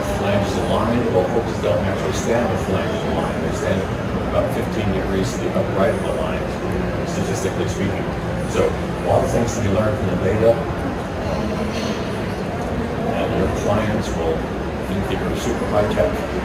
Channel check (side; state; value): both; identical; correlation 1.00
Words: flanges aligned. Well, horses don't actually stand with flanges aligned. They stand about 15 degrees to the upright of the line. statistically speaking. So a lot of things to be learned from the data, and your clients will think that you're super high tech.